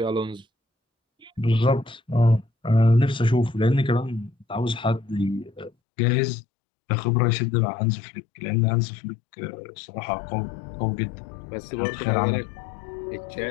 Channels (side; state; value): right; drops out; at 5.7 s